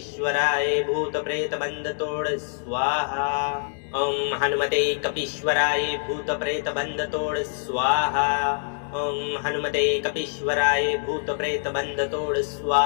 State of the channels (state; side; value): silent; right; digital silence